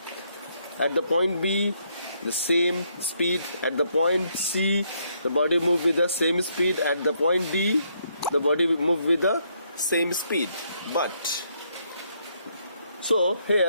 At the point B, the same speed. At the point C, the body move with the same speed. At the point D, the body move with the same speed. But so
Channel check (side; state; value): both; inverted; correlation -0.73